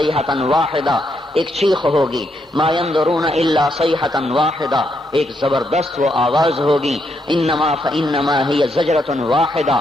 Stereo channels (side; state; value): both; normal; correlation 0.78